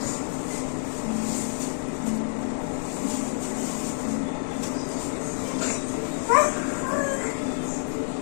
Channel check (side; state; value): right; silent; 58 dB below the other